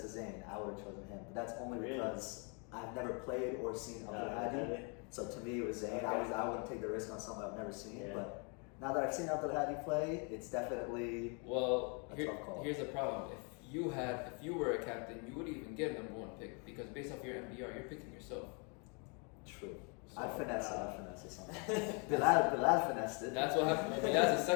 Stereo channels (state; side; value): quieter; right; 35.8 dB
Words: to Zane, I would have chosen him. But that's only Really? because I've never played or seen Abdelhadi. So to me, it was Zane. Okay. I wouldn't take the risk on something I've never seen. Yeah. But now that I've seen Abdelhadi play, it's definitely Well, a tough call. here's the problem. If you were a captain, you wouldn't even get a number 1 pick because based off your MBR, you're picking yourself. true. So, I'd finesse it something. Bilal finessed it. That's what happened. Well, that's a